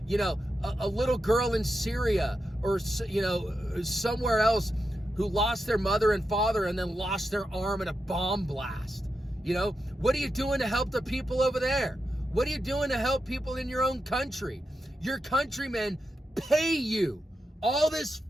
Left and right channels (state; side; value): normal; both; correlation 0.87